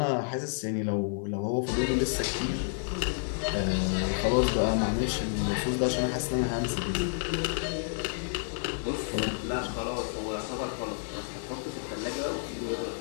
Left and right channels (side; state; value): right; silent; digital silence